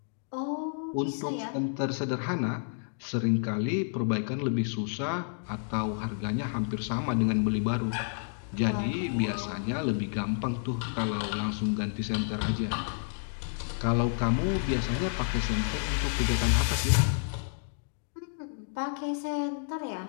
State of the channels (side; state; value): right; silent; digital silence